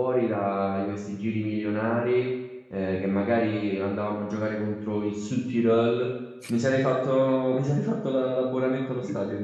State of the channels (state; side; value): identical; both; correlation 1.00